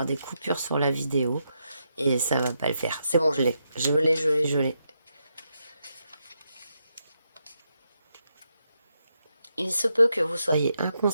des coupures sur la vidéo. Et ça va pas le faire. C'est bon, je l'ai. Je l'ai. Il se peut que vous soyez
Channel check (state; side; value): inverted; both; correlation -0.82